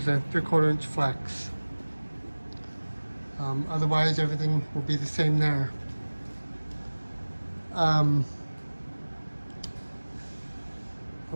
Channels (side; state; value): both; inverted; correlation -1.00